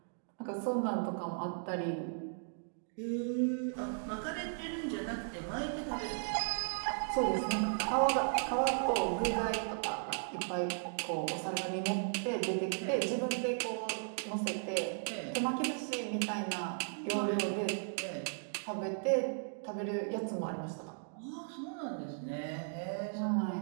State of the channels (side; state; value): left; silent; digital silence